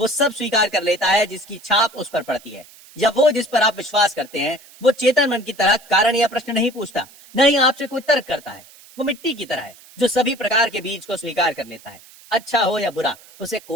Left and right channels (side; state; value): right; noise; hiss, 23 dB below the sound